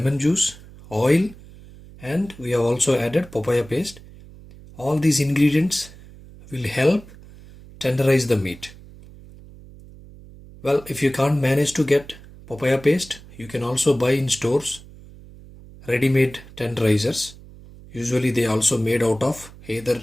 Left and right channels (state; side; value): noise; right; hum, 20 dB below the sound